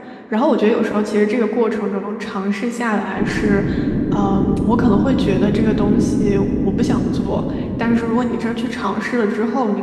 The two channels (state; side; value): identical; both; correlation 1.00